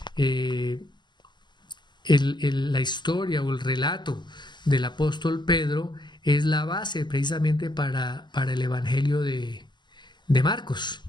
la historia o el relato del apóstol Pedro es la base precisamente para el evangelio de Marcos.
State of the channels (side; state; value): right; late; 0.21 ms